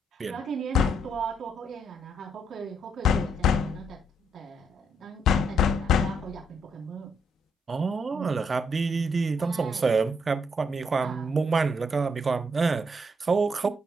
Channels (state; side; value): normal; both; correlation 0.74